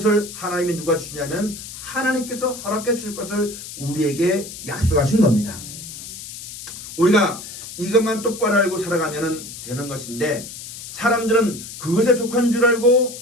하나님이 누가 주냐면 하나님께서 허락해 줄 것을 우리에게 약속하신 겁니다. 우리가 이것만 똑바로 알고 살아가면 되는 것인데 사람들은 그것에 족한 줄 알고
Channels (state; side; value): noise; left; hiss, 12 dB below the sound